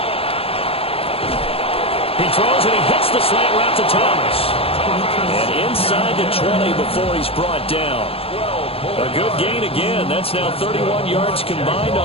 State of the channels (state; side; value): late; right; 0.28 ms